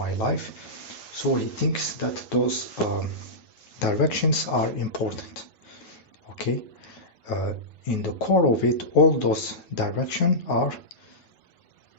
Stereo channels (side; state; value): right; late; 9.3 ms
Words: life. So he thinks that those directions are important. Okay, in the core of it, all those directions are